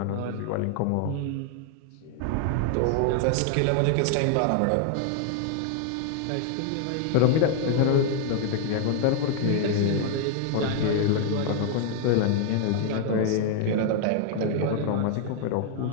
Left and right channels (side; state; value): both; different; correlation 0.00